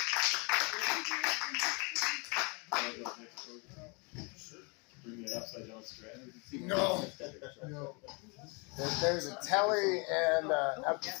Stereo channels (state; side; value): quieter; right; 32.1 dB